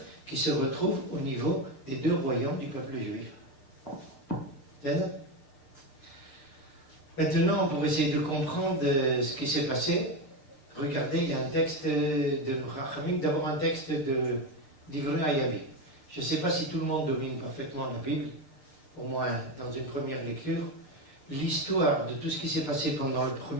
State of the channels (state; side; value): late; right; 6.7 ms